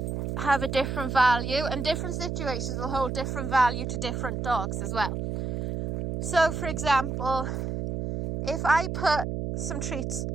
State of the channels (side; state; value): right; noise; hum, 3 dB below the sound